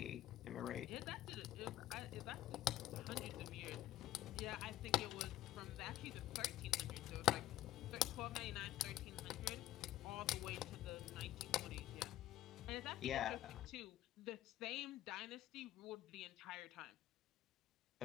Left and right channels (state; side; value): quieter; right; 13.7 dB